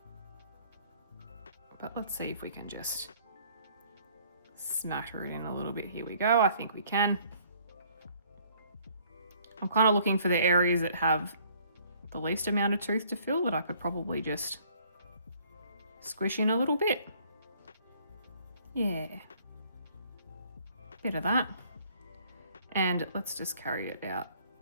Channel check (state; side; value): inverted; both; correlation -0.60